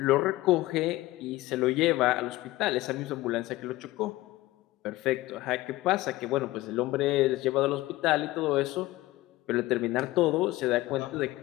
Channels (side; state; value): right; quieter; 18.1 dB